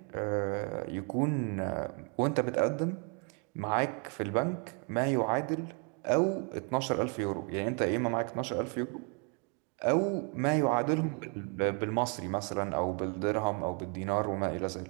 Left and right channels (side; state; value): left; quieter; 37.8 dB